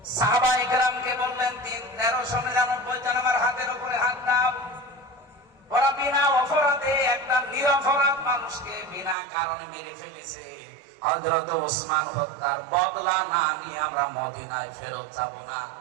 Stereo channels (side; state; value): left; drops out; at 9.2 s